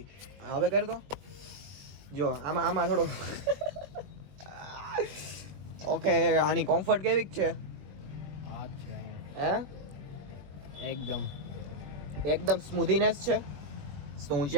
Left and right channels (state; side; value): late; left; 21 ms